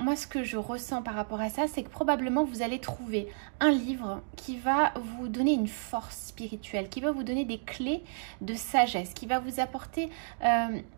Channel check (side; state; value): left; silent; digital silence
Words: ce que je ressens par rapport à ça, c'est que probablement vous allez trouver un livre qui va vous donner une force spirituelle, qui va vous donner des clés de sagesse, qui va vous apporter